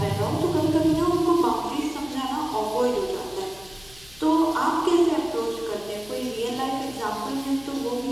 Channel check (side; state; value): left; noise; hum, 23 dB below the sound